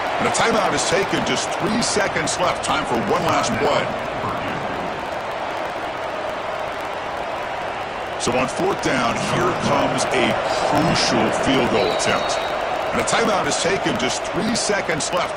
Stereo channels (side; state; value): both; identical; correlation 1.00